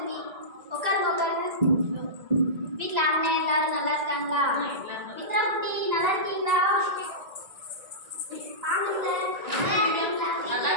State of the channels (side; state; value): left; late; 2.0 ms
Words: உட்காருங்க, உட்காருங்க. வீட்டில் அண்ணன் எல்லாரும் நல்லா இருக்காங்களா? மித்ரா குட்டி நல்லா இருக்கீங்களா?